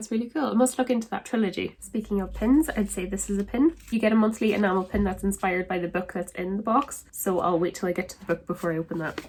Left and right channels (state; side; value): identical; both; correlation 1.00